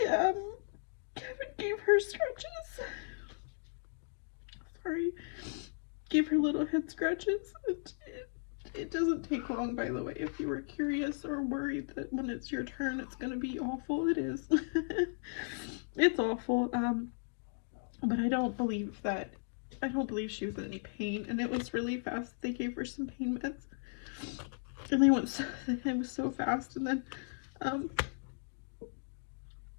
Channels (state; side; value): silent; right; digital silence